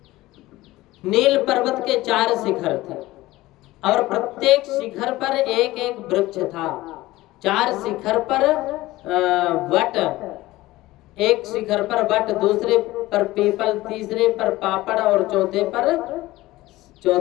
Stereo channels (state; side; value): quieter; right; 17.9 dB